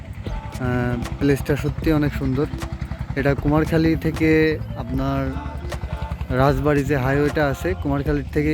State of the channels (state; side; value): identical; both; correlation 1.00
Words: প্লেসটা সত্যি অনেক সুন্দর। এটা কুমারখালী থেকে আপনার রাজবাড়ি যে হাইওয়েটা আছে, কুমারখালীর থেকে